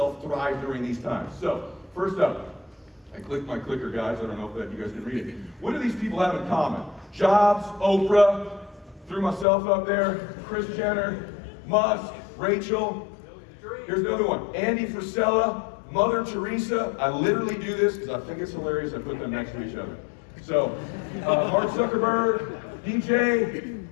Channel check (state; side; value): drops out; right; at 9.5 s